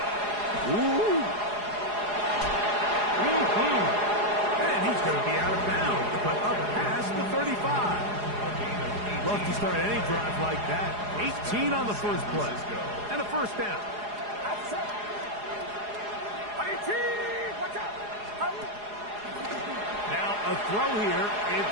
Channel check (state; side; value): late; left; 4.8 ms